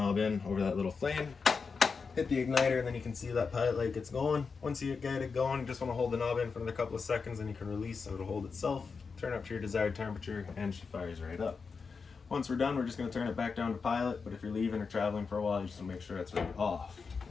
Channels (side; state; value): right; quieter; 5.1 dB